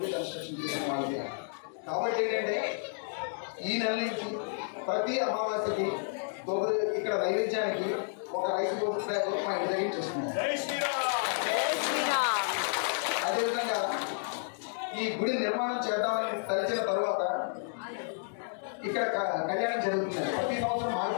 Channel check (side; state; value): right; silent; digital silence